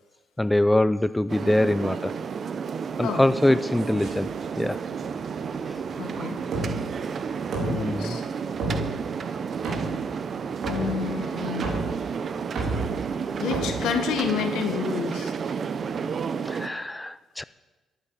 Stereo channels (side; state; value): both; normal; correlation 0.83